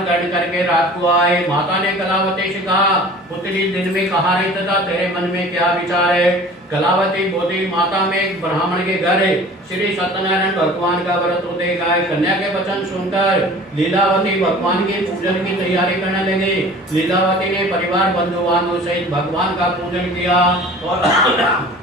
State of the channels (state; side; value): normal; both; correlation 0.44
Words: करके रात को आए। माता ने कलावती से कहा, पुत्री दिन में कहाँ रही तथा तेरे मन में क्या विचार है? कलावती बोली, माता में एक ब्राह्मण के घर श्री सत्यनारायण भगवान का व्रत होते गाय। कन्या के वचन सुनकर लीलावती भगवान के पूजन की तैयारी करने लगी। लीलावती ने परिवार बंधु बांधव सहित भगवान का पूजन किया और